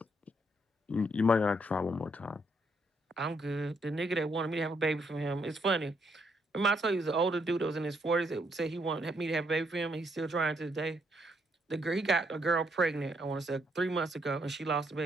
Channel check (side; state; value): both; normal; correlation 0.74